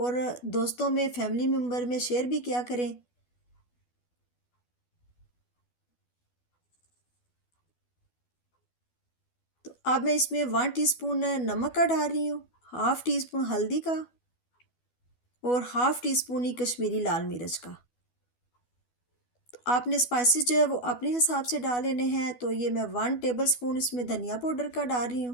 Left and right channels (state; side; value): late; right; 12 ms